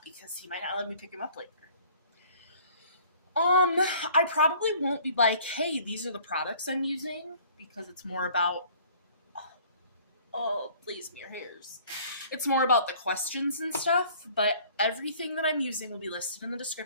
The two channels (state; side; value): inverted; both; correlation -0.53